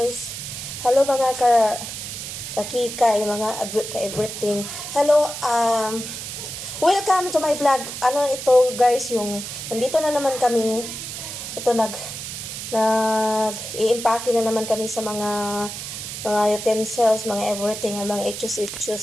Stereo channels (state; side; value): noise; right; hiss, 8 dB below the sound